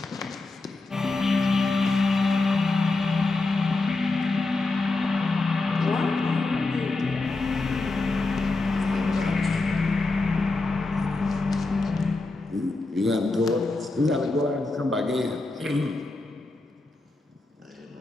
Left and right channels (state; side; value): quieter; right; 3.3 dB